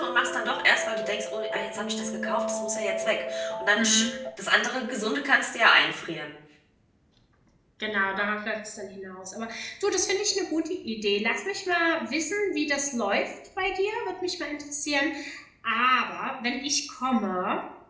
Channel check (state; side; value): identical; both; correlation 1.00